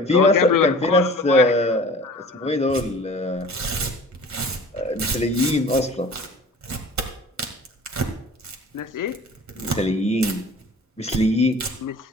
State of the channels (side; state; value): both; normal; correlation 0.44